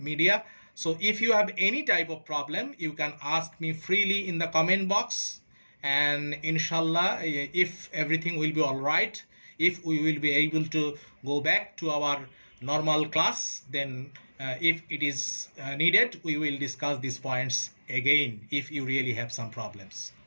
So if you have any type of problem, you can ask me freely in the comment box, and inshallah, if everything will be all right, if we will be able to go back to our normal class, then if it is needed, we will discuss these points again if you really have some problems.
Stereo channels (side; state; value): both; inverted; correlation -1.00